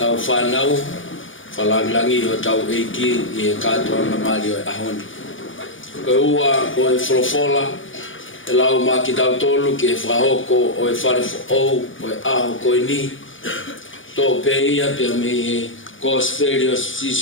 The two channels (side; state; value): right; late; 0.57 ms